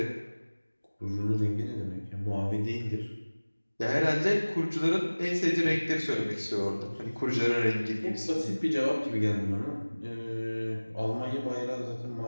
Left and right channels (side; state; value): both; inverted; correlation -1.00